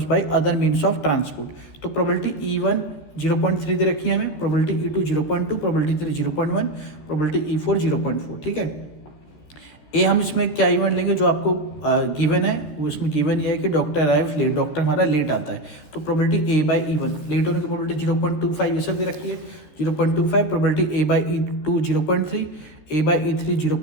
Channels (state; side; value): late; right; 14 ms